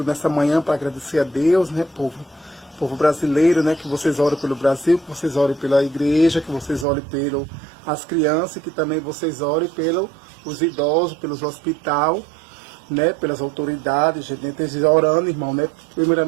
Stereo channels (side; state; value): left; drops out; at 6.9 s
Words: nessa manhã para agradecer a Deus, né, povo brasileiro, né? Que vocês orem pelo Brasil, que vocês orem pela igreja, que vocês orem pelas crianças, que também vocês orem pelos idosos, pelos hospitais, né? Pelas autoridades, gente orando, irmão, né?